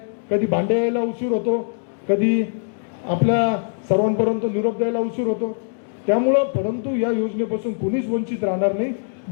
कधी भांडे यायला उशीर होतो, कधी आपल्या सर्वांपर्यंत निरोप द्यायला उशीर होतो. त्यामुळं परंतु या योजनेपासून कोणीच वंचित राहणार नाही.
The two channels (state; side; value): silent; right; digital silence